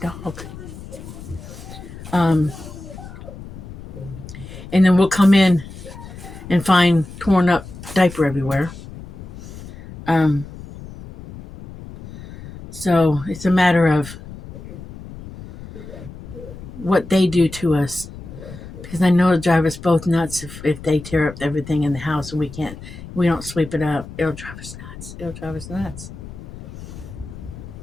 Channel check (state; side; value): noise; left; rumble, 14 dB below the sound